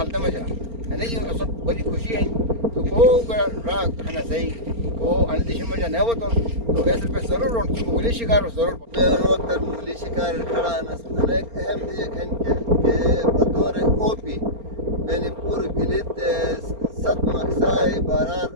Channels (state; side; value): late; left; 4.3 ms